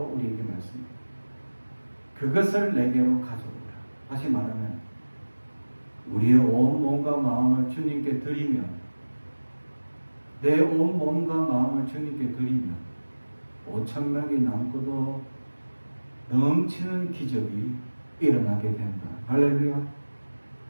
우리에게 말씀합니다. 그것을 내게로 가져오라. 다시 말하면 우리의 온 몸과 마음을 주님께 드리면, 내 온 몸과 마음을 주님께 드리면 5,000명이 남고도 넘치는 기적이 일어나게 된다. 할렐루야.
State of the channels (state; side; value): inverted; both; correlation -1.00